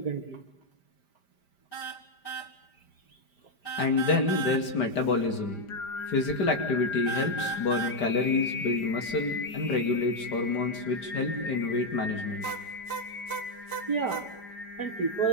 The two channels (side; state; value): right; late; 5.0 ms